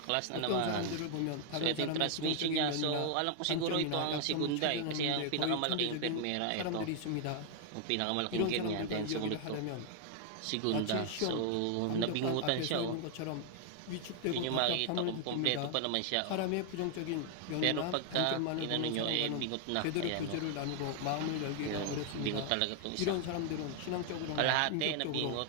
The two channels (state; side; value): different; both; correlation 0.00